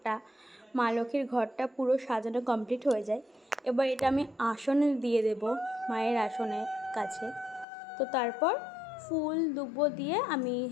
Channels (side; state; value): right; drops out; at 7.7 s